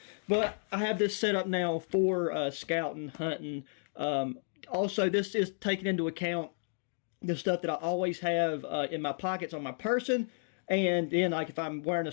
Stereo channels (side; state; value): right; silent; digital silence